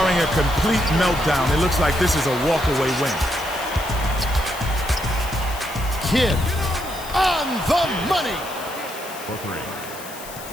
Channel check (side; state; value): left; noise; hiss, 14 dB below the sound